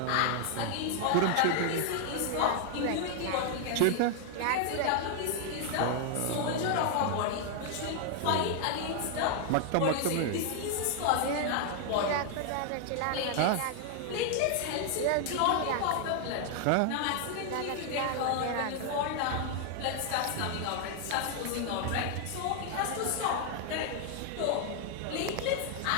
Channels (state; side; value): different; both; correlation 0.00